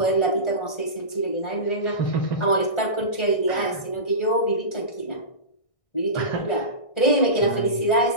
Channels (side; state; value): right; late; 1.6 ms